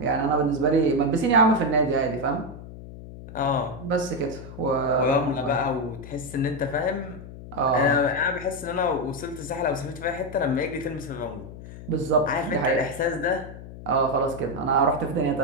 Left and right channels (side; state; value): left; noise; hum, 14 dB below the sound